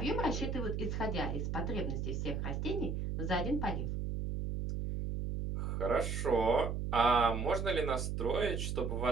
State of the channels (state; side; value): noise; right; hum, 2 dB below the sound